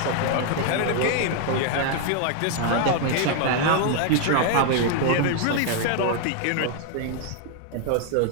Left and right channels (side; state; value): both; different; correlation 0.00